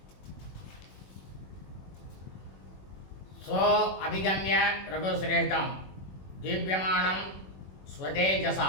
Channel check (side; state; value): right; late; 21 ms